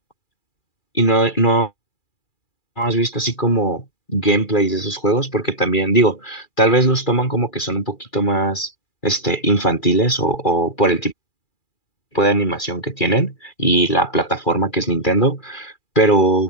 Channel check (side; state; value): right; late; 2.4 ms